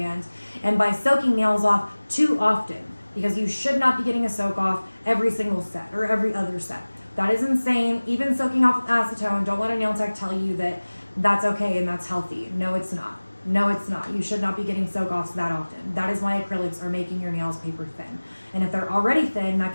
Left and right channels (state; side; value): inverted; both; correlation -1.00